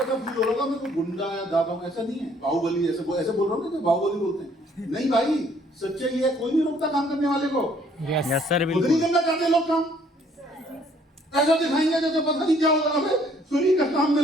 ऐसा फील हो रहा होगा मैं कोई गुंडा या दादा हूं, ऐसा नहीं है। बाहुबली ऐसे बोल रहा हूँ ना, बाहुबली बोलते हैं, नहीं भाई। सच्चाई है, कोई नहीं रोकता काम करने वाले को। यस सर खुद नहीं करना चाहते लोग काम, ऐसा दिखाएंगे जैसे पता नहीं क्या होगा, हमें फ्री का काम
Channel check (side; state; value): both; normal; correlation 0.62